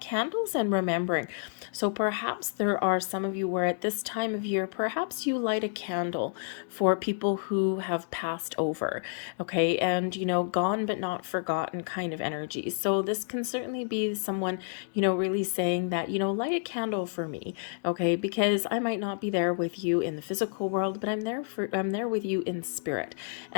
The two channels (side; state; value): right; silent; digital silence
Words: and remembering. So perhaps there are some of you where at this time of year, perhaps you light a candle for people who have passed over, okay, and gone but not forgotten kind of energy. So this can certainly be someone, really saying that, light a candle for me, okay, because I might not be there with you in the physical world, but I'm there with you in spirit.